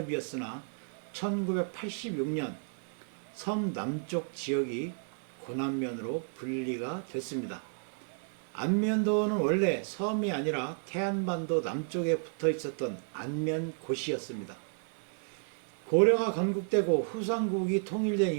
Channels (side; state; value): left; silent; 56 dB below the other